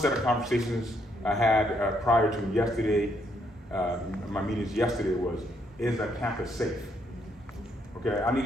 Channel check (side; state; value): both; normal; correlation 0.73